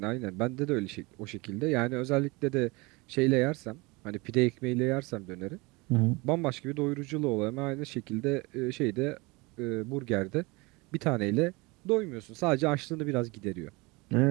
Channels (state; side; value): quieter; left; 25.4 dB